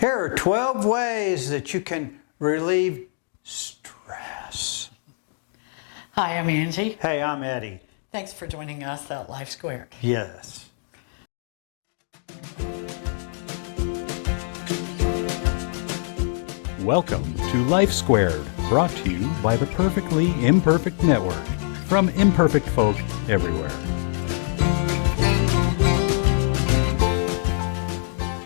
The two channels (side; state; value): right; silent; 63 dB below the other